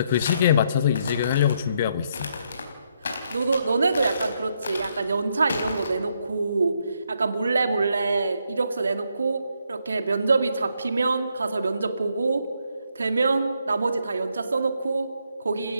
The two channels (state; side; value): inverted; both; correlation -0.75